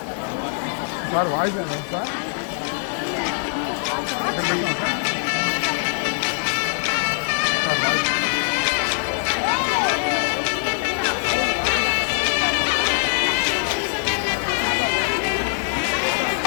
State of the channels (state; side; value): silent; right; digital silence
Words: సార్ వాయిస్ సార్